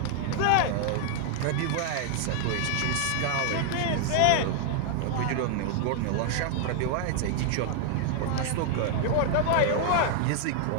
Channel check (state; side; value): different; both; correlation 0.00